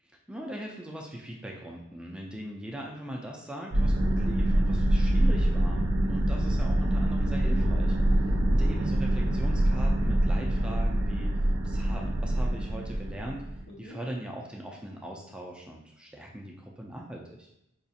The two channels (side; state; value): both; normal; correlation 0.95